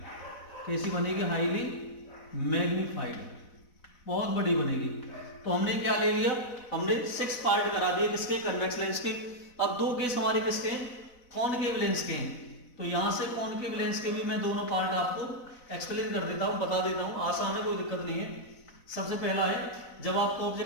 कैसी बनेगी, हाईली मैग्नीफाइड, बहुत बड़ी बनेगी। तो हमने क्या ले लिया, हमने 6 पार्ट करा दिए किसके, कन्वेक्स लेंस के। अब 2 केस हमारे किसके हैं, कॉनकेव लेंस के हैं। तो यहां से कॉनकेव लेंस के भी मैं दोनों पार्ट आपको एक्सप्लेन कर देता हूं, बता देता हूं, आसान है, कोई दिक्कत नहीं है। सबसे पहला है, जब आपका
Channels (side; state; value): right; late; 4.0 ms